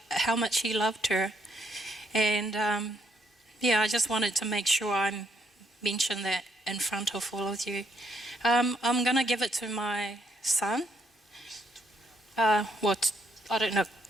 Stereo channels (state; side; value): normal; both; correlation 0.73